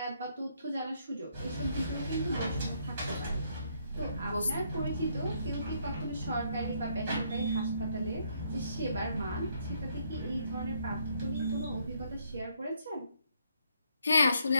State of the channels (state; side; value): inverted; both; correlation -0.71